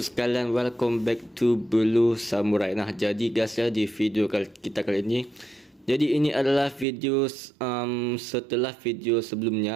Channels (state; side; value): drops out; left; at 6.9 s